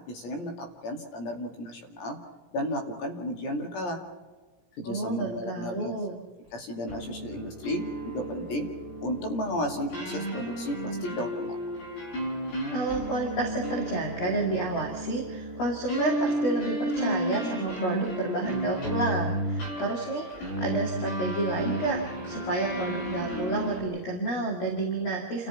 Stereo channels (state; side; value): late; right; 17 ms